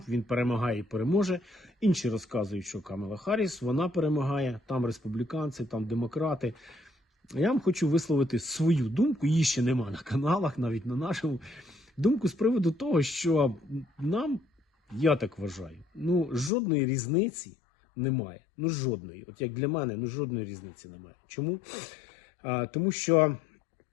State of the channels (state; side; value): drops out; right; at 16.5 s